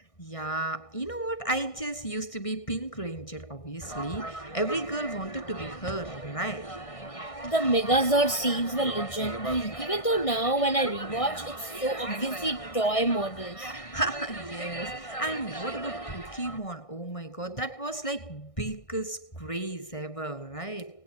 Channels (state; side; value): late; right; 1.6 ms